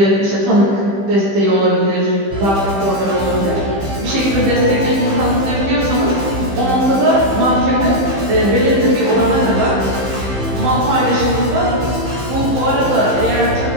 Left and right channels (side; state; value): left; late; 15 ms